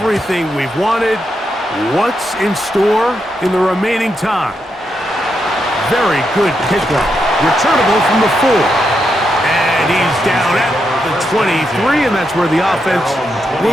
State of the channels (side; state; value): both; normal; correlation 0.83